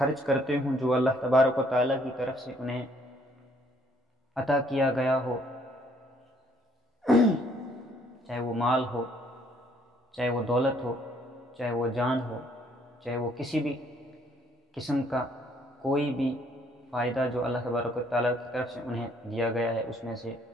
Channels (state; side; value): normal; both; correlation 0.65